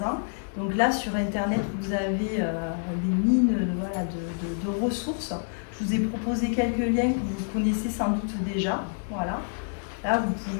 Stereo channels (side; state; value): right; silent; digital silence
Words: ans. Donc là, sur Internet, vous avez des mines de ressources. Je vous ai proposé quelques liens que vous connaissez sans doute déjà. Voilà. Là, vous